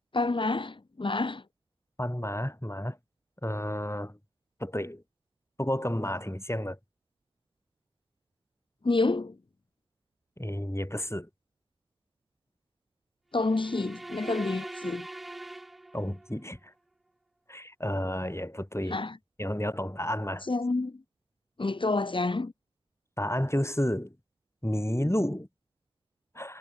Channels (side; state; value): both; normal; correlation 0.83